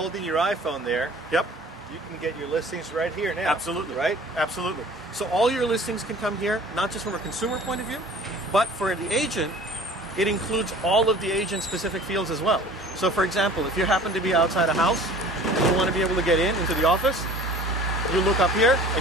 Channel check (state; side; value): normal; both; correlation 0.46